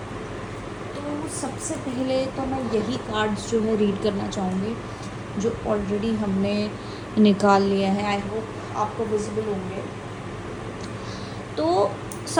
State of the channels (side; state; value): both; identical; correlation 1.00